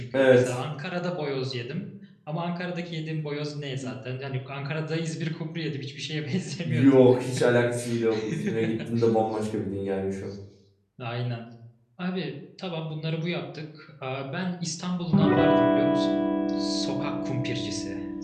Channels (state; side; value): identical; both; correlation 1.00